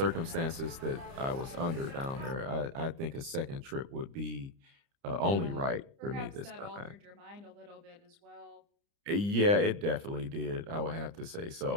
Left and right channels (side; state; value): left; late; 30 ms